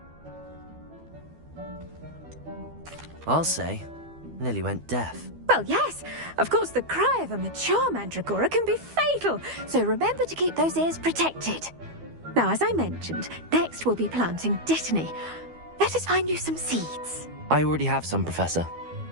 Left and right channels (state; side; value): late; left; 12 ms